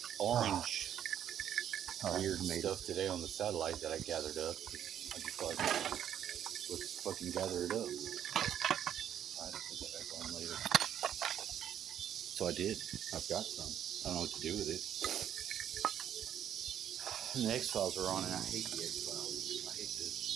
orange weird stuff today on the satellite that I gathered up. I just thought, let's fucking gather it up. I had to put that back on later. So I did. I've got some. I don't know what to do with it. And the X-Files are on, and I hate the X-Files. I hate to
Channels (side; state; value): left; quieter; 10.0 dB